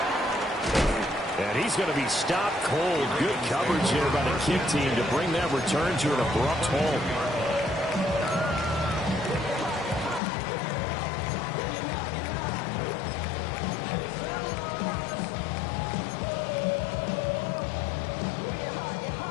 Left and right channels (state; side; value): drops out; right; at 10.2 s